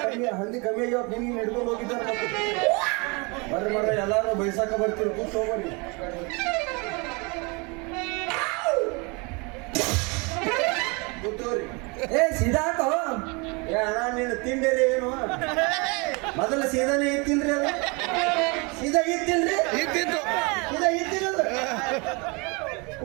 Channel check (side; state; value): left; quieter; 29.5 dB